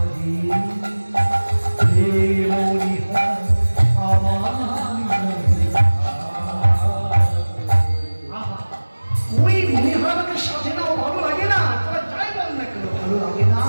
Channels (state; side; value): inverted; both; correlation -1.00